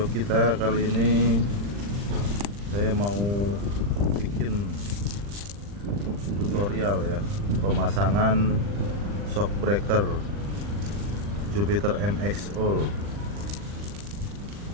kita kali ini saya mau bikin tutorial ya, pemasangan shockbreaker Jupiter MX All.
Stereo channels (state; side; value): late; left; 40 ms